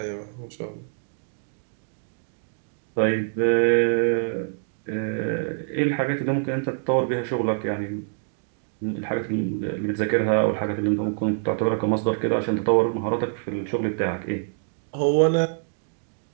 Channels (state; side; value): silent; left; digital silence